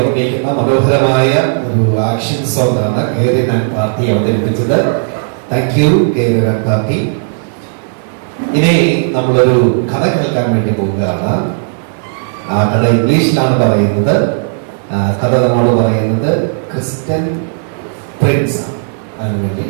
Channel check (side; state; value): left; silent; digital silence